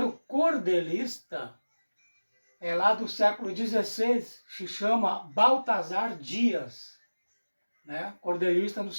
cordelista é lá do século XVI, se chama Baltazar Dias, né? Cordelista no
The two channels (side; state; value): both; inverted; correlation -1.00